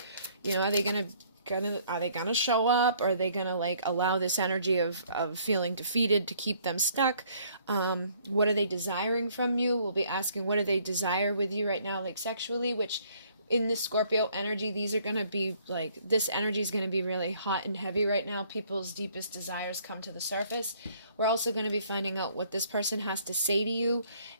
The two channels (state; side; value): inverted; both; correlation -0.62